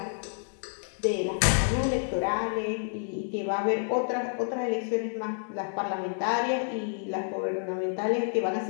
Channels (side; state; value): right; silent; digital silence